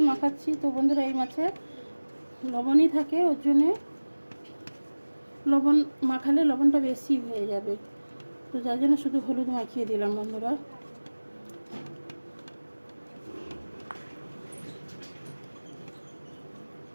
মাখাচ্ছি। তো বন্ধুরা, এই মাছে লবণই থাকে, ওর জন্যে লবণ মাখালে লবণটা বেশি হয়ে যাবে। তো যার জন্য শুধু হলুদ মাখিয়ে দিলাম বন্ধুরা।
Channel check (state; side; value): inverted; both; correlation -1.00